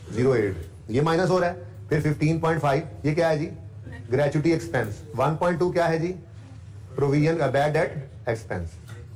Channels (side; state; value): both; identical; correlation 1.00